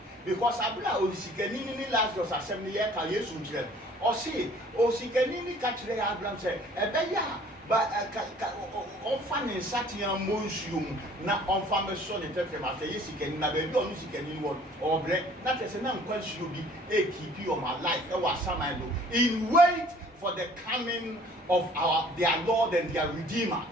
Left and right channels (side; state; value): both; normal; correlation 0.54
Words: Because abla o sikani ni Lazarus asem ne ye ka Yesu nkire o say o sikani ni ka kire Abraham say ebe ya ba on fa ne satian monsuum na on fa me so ne tefe ma say sikani na be bi onu sikani ni won o bre na tese na nkwanshi obi e keep your my life e wa samando in wait for the coming of their Lord and their Redeemer